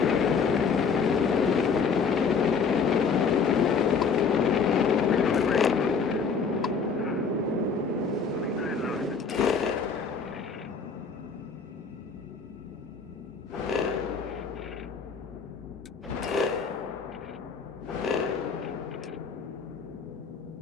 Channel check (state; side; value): quieter; right; 5.5 dB